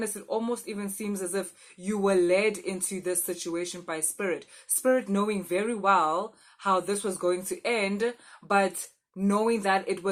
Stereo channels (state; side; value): identical; both; correlation 1.00